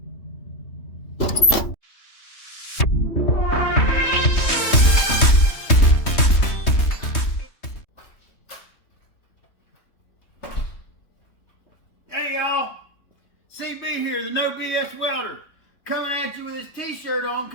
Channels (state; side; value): late; right; 3.2 ms